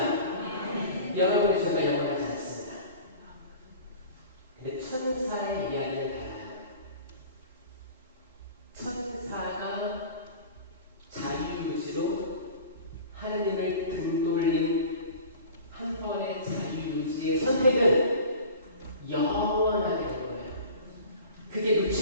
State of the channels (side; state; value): both; inverted; correlation -0.40